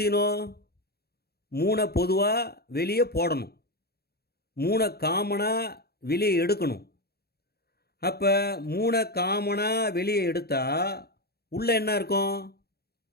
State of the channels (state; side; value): late; right; 0.46 ms